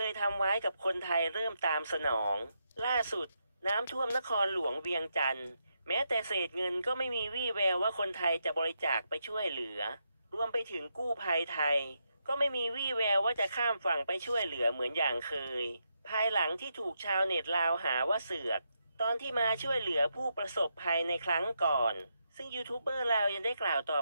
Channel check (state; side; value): inverted; both; correlation -0.82